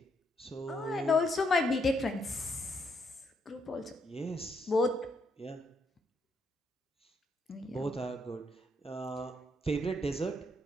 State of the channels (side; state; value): both; normal; correlation 0.76